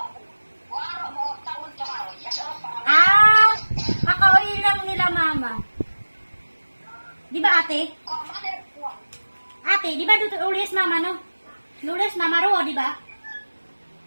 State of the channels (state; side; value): inverted; both; correlation -1.00